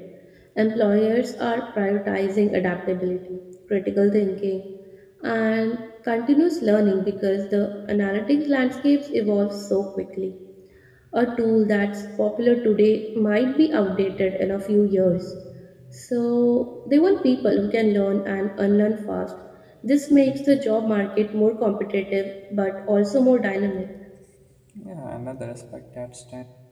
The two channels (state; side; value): identical; both; correlation 1.00